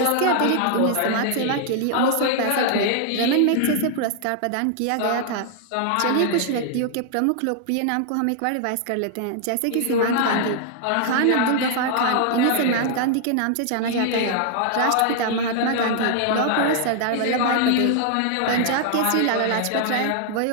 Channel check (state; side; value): different; both; correlation -0.01